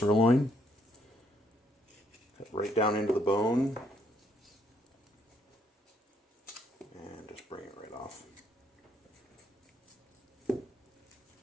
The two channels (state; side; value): normal; both; correlation 0.71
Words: Cut right down into the bone and just bring it right off.